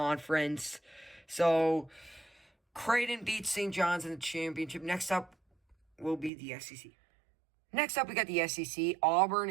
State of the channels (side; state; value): left; drops out; at 6.3 s